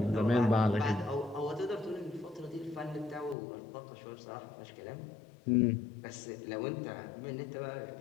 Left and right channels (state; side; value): drops out; right; at 3.4 s